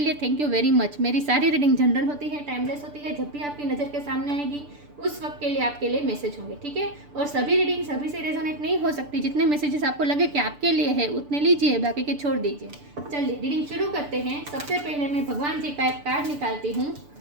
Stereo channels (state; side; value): late; left; 6.8 ms